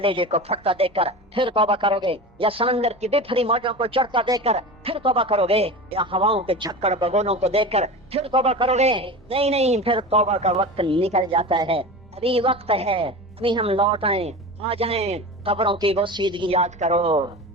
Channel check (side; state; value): both; normal; correlation 0.30